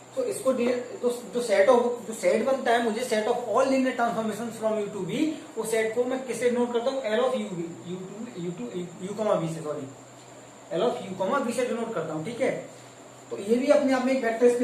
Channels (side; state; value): both; identical; correlation 1.00